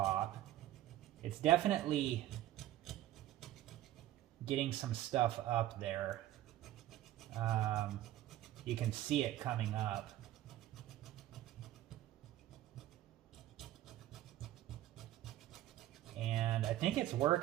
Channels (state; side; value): quieter; left; 13.8 dB